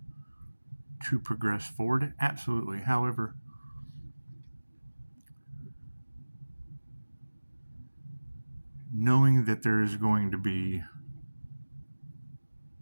to progress forward? Absolutely. However, knowing that there is going to be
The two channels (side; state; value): both; inverted; correlation -1.00